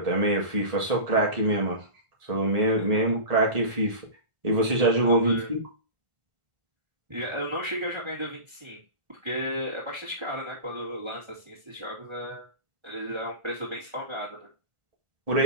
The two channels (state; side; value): late; left; 1.5 ms